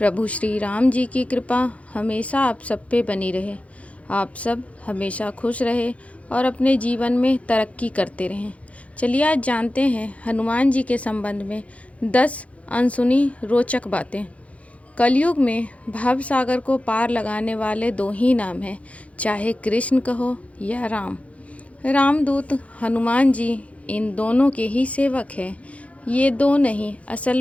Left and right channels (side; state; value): right; late; 0.065 ms